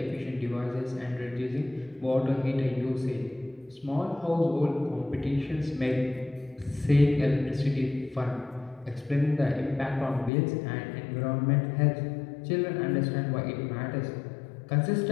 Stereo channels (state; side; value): drops out; right; at 10.3 s